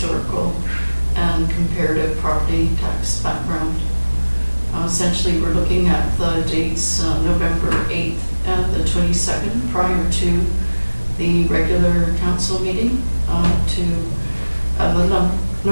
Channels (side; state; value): both; inverted; correlation -1.00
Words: and comparative property tax background. Essentially, we're looking at the dates November 8th and the 22nd prior to the regular council meeting